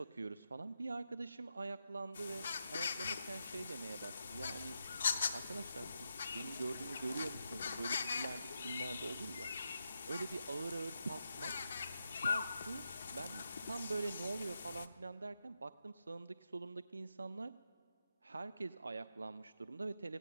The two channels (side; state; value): both; inverted; correlation -0.85